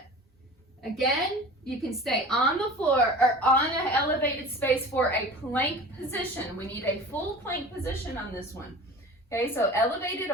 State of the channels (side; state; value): both; normal; correlation 0.38